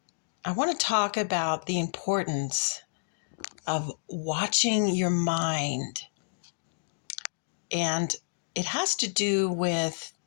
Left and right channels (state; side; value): silent; right; digital silence